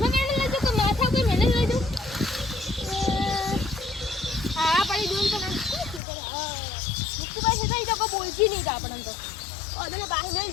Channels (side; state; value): right; drops out; at 6.0 s